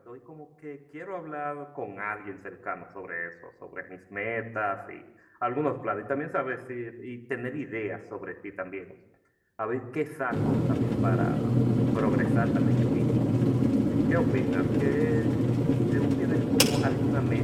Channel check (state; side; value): identical; both; correlation 1.00